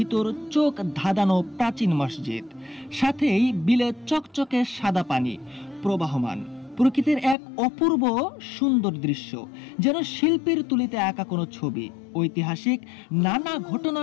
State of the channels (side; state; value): right; drops out; at 7.4 s